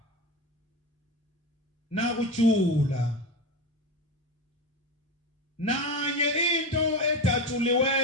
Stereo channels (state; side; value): normal; both; correlation 0.21